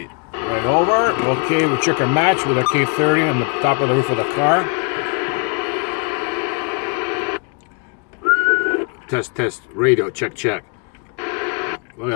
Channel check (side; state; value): right; quieter; 34.3 dB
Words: Right over. Okay, we check our match with our K30 on the top of the roof of the car. Test, radio, check. Look at